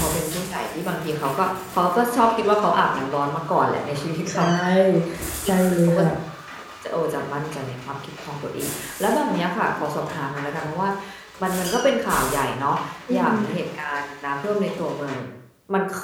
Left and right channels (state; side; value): identical; both; correlation 1.00